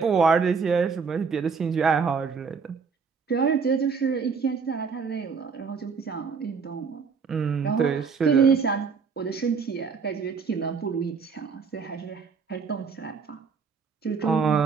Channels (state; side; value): quieter; left; 5.5 dB